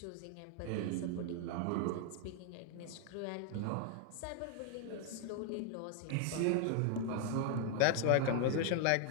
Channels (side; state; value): both; different; correlation 0.00